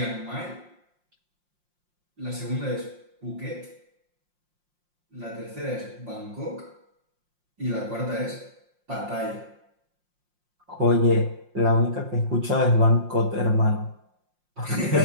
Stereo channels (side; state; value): left; late; 5.6 ms